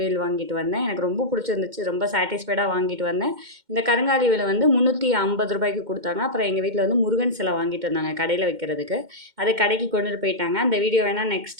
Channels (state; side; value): late; left; 2.1 ms